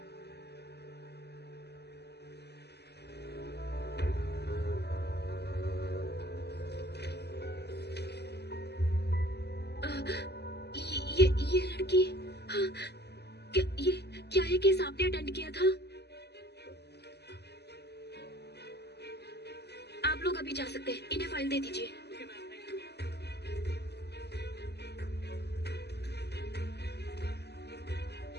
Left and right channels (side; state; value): right; late; 0.49 ms